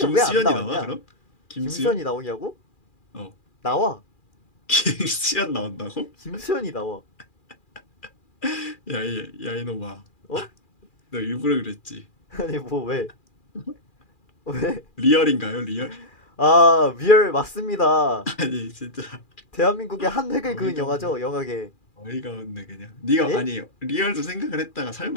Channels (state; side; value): late; right; 2.4 ms